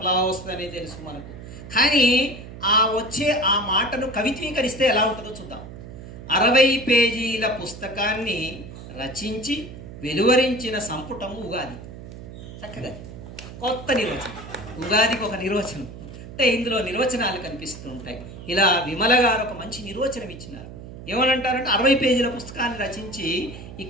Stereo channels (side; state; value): right; noise; hum, 13 dB below the sound